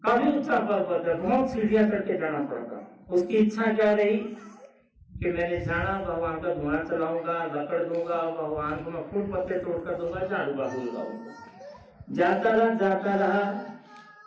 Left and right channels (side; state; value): both; identical; correlation 1.00